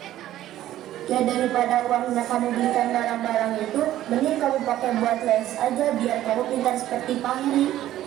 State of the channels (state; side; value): quieter; left; 13.4 dB